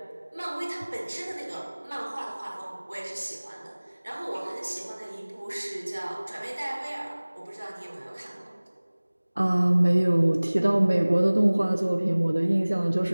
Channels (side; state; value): both; inverted; correlation -1.00